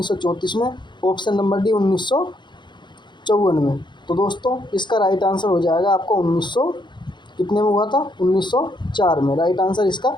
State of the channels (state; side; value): late; right; 0.22 ms